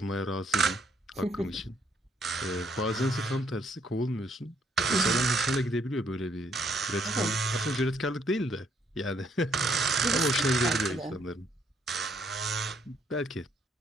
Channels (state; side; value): normal; both; correlation 0.69